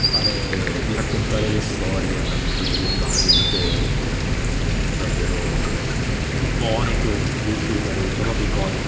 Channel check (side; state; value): both; identical; correlation 1.00